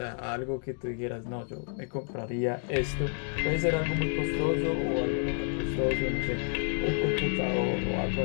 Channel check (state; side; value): silent; right; 58 dB below the other